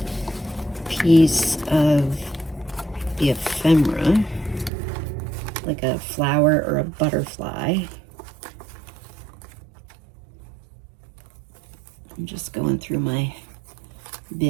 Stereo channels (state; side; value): drops out; left; at 4.7 s